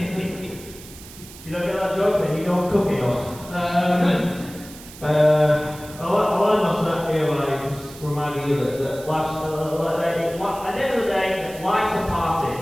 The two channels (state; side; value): noise; right; hiss, 18 dB below the sound